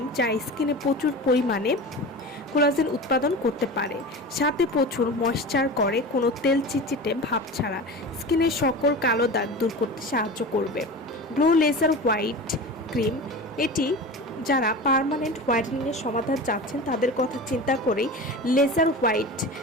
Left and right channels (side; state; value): both; normal; correlation 0.31